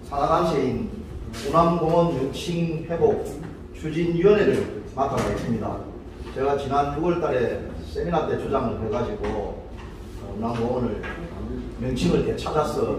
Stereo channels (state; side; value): identical; both; correlation 1.00